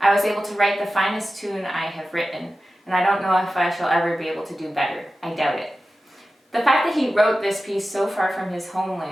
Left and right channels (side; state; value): both; normal; correlation 0.93